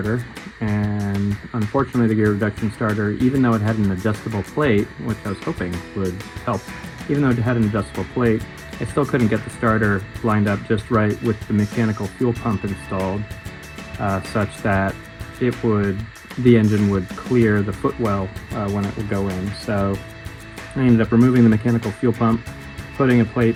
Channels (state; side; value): identical; both; correlation 1.00